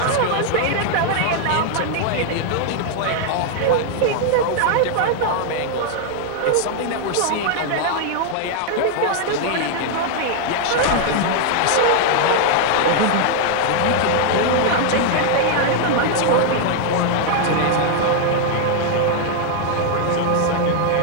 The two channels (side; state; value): both; different; correlation 0.00